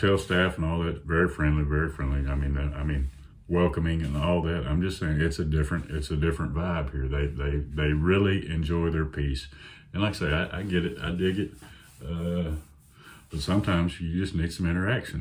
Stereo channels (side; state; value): both; identical; correlation 1.00